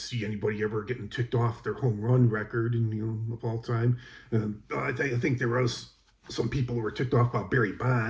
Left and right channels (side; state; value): both; identical; correlation 1.00